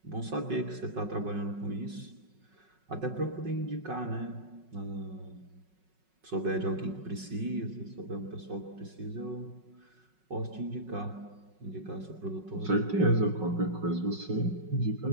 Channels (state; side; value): late; left; 5.4 ms